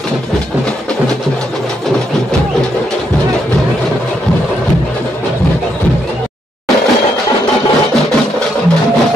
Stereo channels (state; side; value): normal; both; correlation 0.77